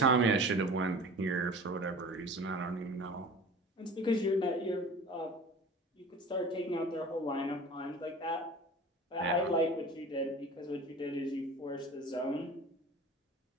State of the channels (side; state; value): both; normal; correlation 0.40